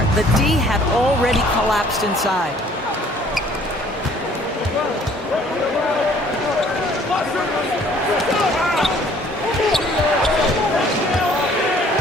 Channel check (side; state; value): both; normal; correlation 0.57